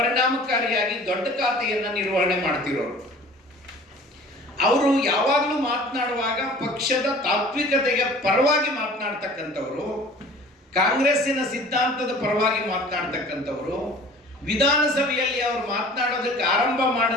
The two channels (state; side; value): normal; both; correlation 0.46